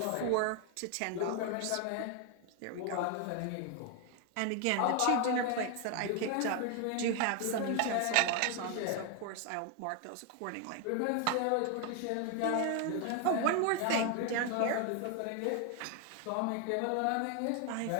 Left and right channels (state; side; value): different; both; correlation 0.01